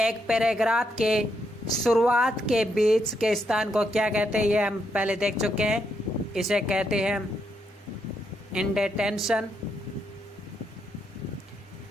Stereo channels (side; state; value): both; normal; correlation 0.79